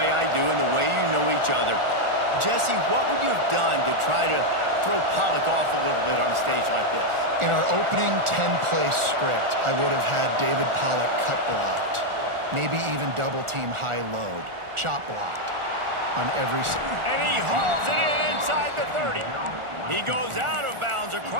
I do and the way you know each other, Jesse, what would you have done to try to throw Pollock off a little bit on a stage like this? In our opening 10-play script, I would have had David Pollock cut blocked, maybe even double-team high load, chop blocked on every... And he hauls it in inside the 30. He goes out of bounds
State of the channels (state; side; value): late; left; 1.4 ms